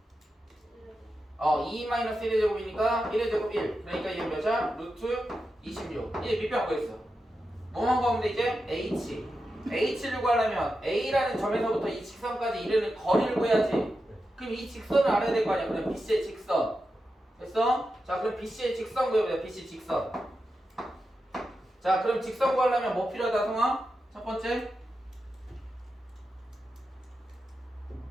2 마이너스 1의 제곱이니까 1의 제곱 1. 그러니까 이게 몇이야? 루트 26. 이제 밑변 구했어. 뭐만 구하면 돼 이제? H를 구하려면 A라는 점에서부터 이 직선까지 이르는 거리를 구해야지. 그럼 이 직선을 알아야 될 거 아니야. 그럼 BC의 직선. 됐어? 자, 그럼 BC의 직선 구해보자. BC 직선. 자, 그럼 직선 구하려면 뭐 필요하다, 성아? 첫 번째?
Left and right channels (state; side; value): normal; both; correlation 0.89